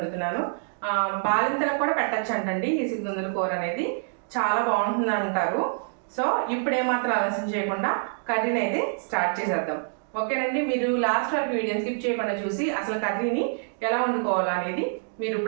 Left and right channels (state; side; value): silent; left; digital silence